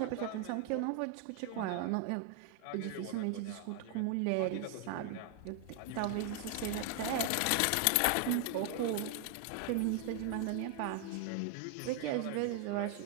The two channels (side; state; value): both; different; correlation 0.01